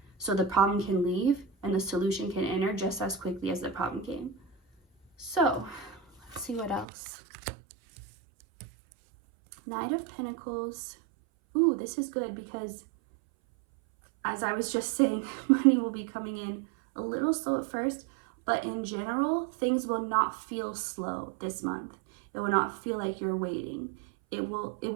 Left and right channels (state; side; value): drops out; left; at 6.9 s